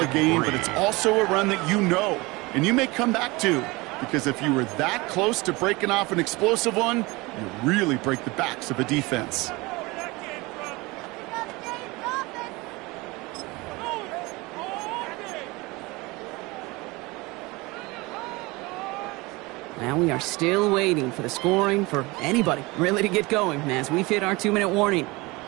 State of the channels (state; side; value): quieter; left; 23.4 dB